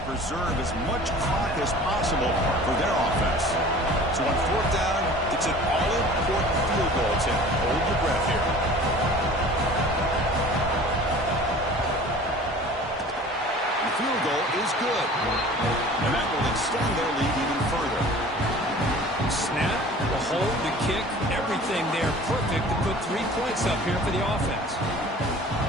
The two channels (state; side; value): normal; both; correlation 0.44